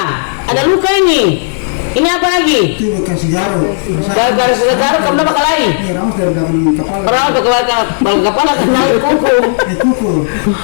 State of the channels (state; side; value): silent; right; digital silence